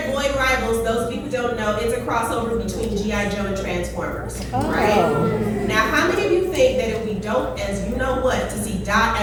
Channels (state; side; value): identical; both; correlation 1.00